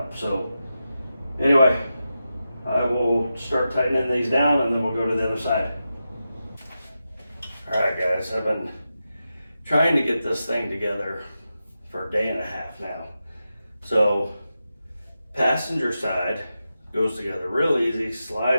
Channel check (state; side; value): inverted; both; correlation -0.90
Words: So anyway, I will start tightening these down, and then we'll go to the other side. All right, guys, I've been trying to get this thing together for a day and a half now. So passenger side goes together real easy,